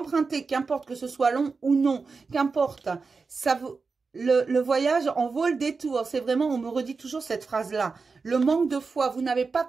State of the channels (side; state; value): left; quieter; 4.5 dB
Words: qu'importe que ce soit long ou non, qu'importe, ça vous... Le voyage en vaut le détour. C'est vraiment, on me redit toujours cette phrase-là. Le manque de foi, vous n'avez pas